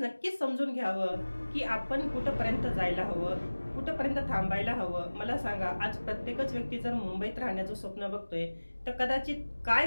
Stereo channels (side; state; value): both; inverted; correlation -1.00